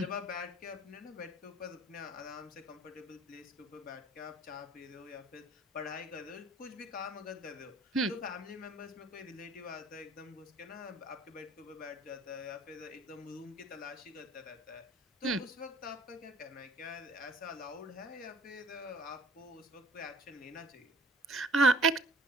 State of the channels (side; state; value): both; normal; correlation 0.53